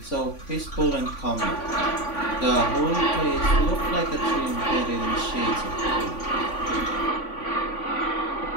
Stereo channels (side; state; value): right; late; 3.5 ms